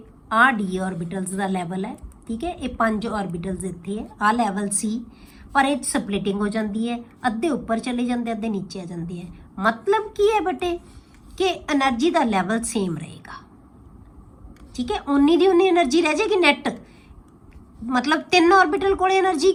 ਆ ਡੀ ਆਰਬਿਟਲਸ ਦਾ ਲੈਵਲ ਹੈ, ਠੀਕ ਹੈ, ਇਹ 5 ਆਰਬਿਟਲਸ ਇੱਥੇ ਹੈ, ਆ ਲੈਵਲ ਸੀ, ਪਰ ਇਹ ਸਪਲਿਟਿੰਗ ਹੋ ਜਾਂਦੀ ਹੈ, ਅੱਧੇ ਉੱਪਰ ਚਲੇ ਜਾਂਦੇ ਅੱਧੇ ਨੀਚੇ ਆ ਜਾਂਦੇ ਹੈ। मतलब ਕੀ ਹੈ ਬੇਟੇ ਕਿ એનર્ਜੀ ਦਾ ਲੈਵਲ ਸੇਮ ਰਹੇਗਾ, ਠੀਕ ਹੈ, ਉਨੀ ਦੀ ਉਨੀ એનર્ਜੀ ਰਹਿ ਜਾਏਗੀ ਨੈਟ। मतलब 3 ऑर्बिटल कोल एनर्जी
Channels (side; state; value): both; identical; correlation 1.00